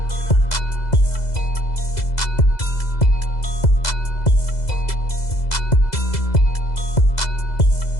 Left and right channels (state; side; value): late; right; 2.0 ms